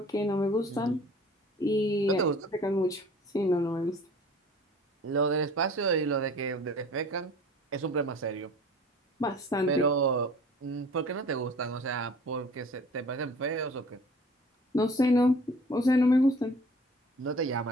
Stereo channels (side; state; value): both; normal; correlation 0.47